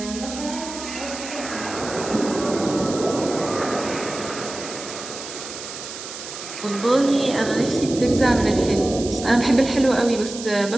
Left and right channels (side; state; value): right; noise; hiss, 10 dB below the sound